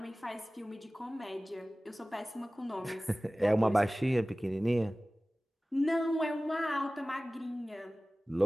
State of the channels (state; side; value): normal; both; correlation 0.97